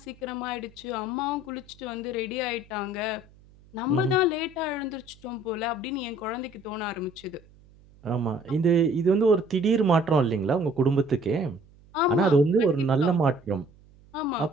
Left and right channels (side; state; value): right; noise; hum, 27 dB below the sound